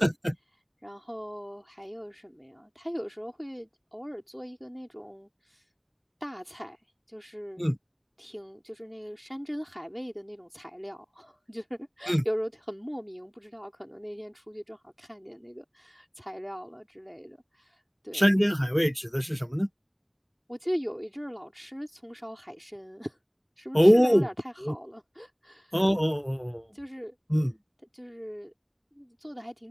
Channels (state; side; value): identical; both; correlation 1.00